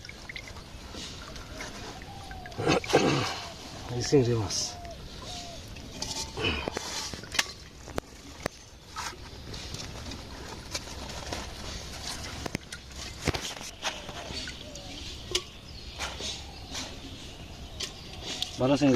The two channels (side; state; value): both; identical; correlation 1.00